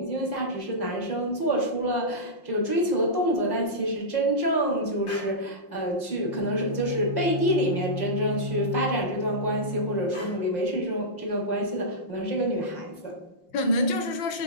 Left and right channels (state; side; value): late; right; 5.7 ms